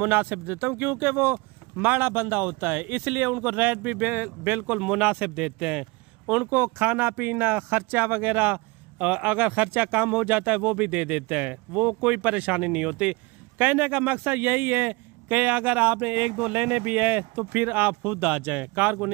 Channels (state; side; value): quieter; left; 25.0 dB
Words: देता हूँ, क्योंकि वो माड़ा बंदा होता है, इसलिए उनको रेट भी बिल्कुल मुनासिब देते हैं। उनको खाना पीना खर्चा वगैरह अगर खर्चा कम हो जाता है वो भी दे देते हैं, वो कोई परेशानी नहीं होती। कहने का मकसद यही है कि अगर आपने 1-2 लेने भी है तो फिर आप खुद आ जाएं, कार्गो